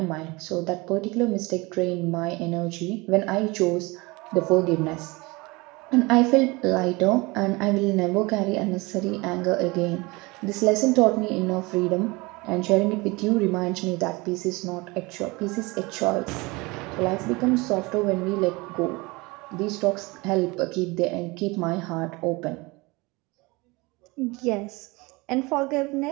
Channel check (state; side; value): quieter; left; 24.4 dB